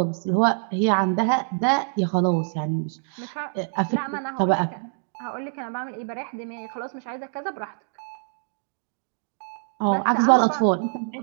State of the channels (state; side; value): silent; left; digital silence